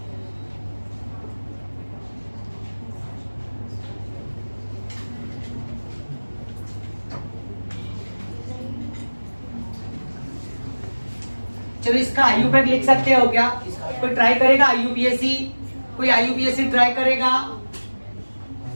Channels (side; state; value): both; inverted; correlation -1.00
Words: चलो इसका IUPAC लिख सकते हो क्या? कोई ट्राई करेगा IUPAC? कोई IUPAC ट्राई करेगा?